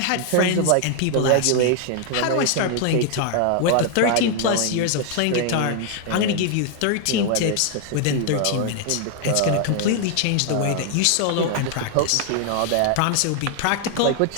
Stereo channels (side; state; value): both; different; correlation 0.00